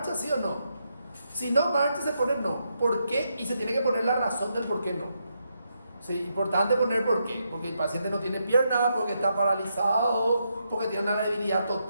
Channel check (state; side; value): inverted; both; correlation -0.81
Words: sí o no? Si no marcha, se pone no. ¿Por qué? Y se tiene que poner la razón del por qué no. Sí, importante poner por qué. Porque el paciente no tiene pierna, porque está paralizado, porque tiene una debilidad